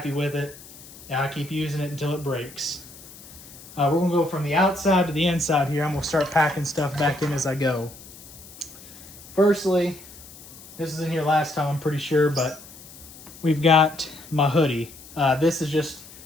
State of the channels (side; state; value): left; noise; hiss, 18 dB below the sound